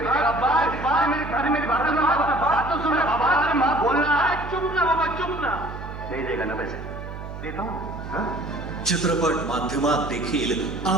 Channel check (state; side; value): noise; right; hum, 10 dB below the sound